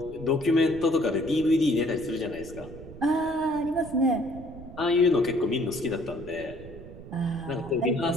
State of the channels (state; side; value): noise; right; rumble, 15 dB below the sound